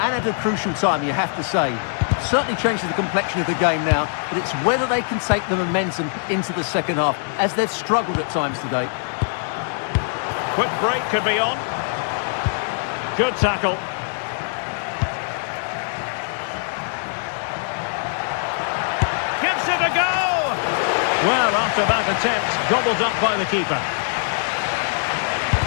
at a crucial time, you have to say. Certainly changes the complexion of the game now, but it's whether they can take the momentum into the second half, as they've struggled at times today. Quick break could be on. Good tackle. Gives it a go! Well, after that attempt, gobbled up by the keeper.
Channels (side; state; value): right; silent; digital silence